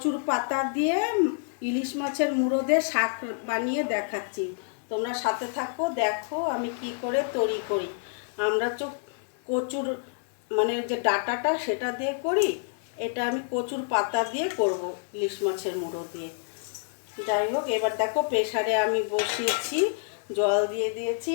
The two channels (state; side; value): silent; right; digital silence